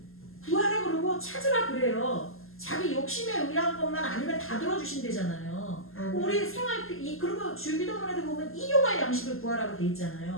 구하라 그러고 찾으라 그래요. 자기 욕심에 의한 것만 아니면 다 들어주신대잖아요. 우리 생활 그리고 주기도문에도 보면 일용할 양식을 구하라고 돼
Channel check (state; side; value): late; right; 0.61 ms